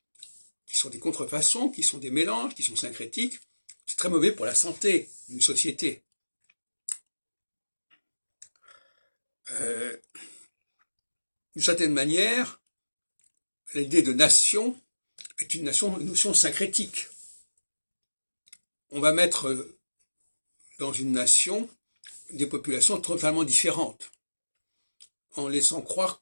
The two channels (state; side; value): inverted; both; correlation -1.00